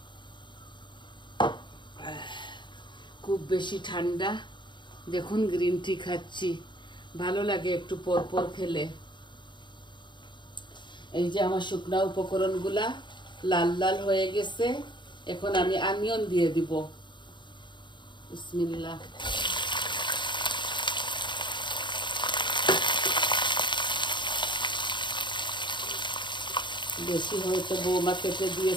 খুব বেশি ঠান্ডা, দেখুন গ্রিন টি খাচ্ছি, ভালো লাগে একটু পর পর খেলে। এই যে আমার শুকনা উপকরণগুলা লাল লাল হয়ে গেছে। এখন আমি অনিয়ন দিয়ে দিব। বিসমিল্লাহ। বেশি হয়তো বৌমা কেটে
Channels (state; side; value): late; right; 0.23 ms